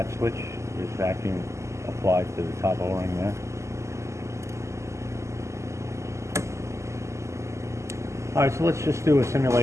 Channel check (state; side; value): late; left; 0.14 ms